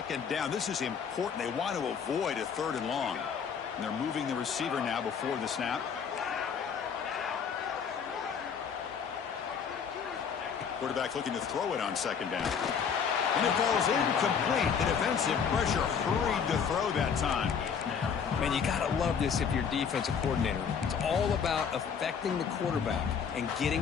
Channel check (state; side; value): quieter; right; 6.8 dB